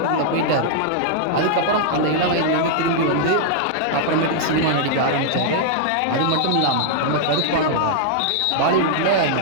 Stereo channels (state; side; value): different; both; correlation -0.01